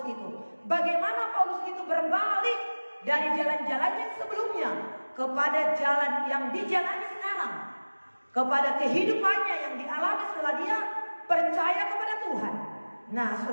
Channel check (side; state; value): both; inverted; correlation -1.00